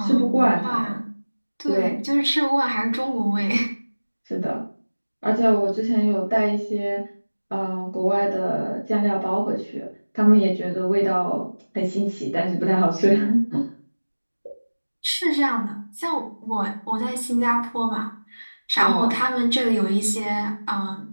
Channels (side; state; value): both; inverted; correlation -1.00